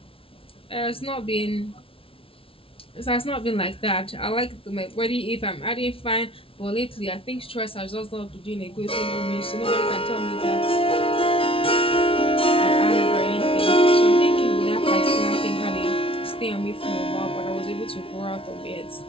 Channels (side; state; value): right; late; 0.26 ms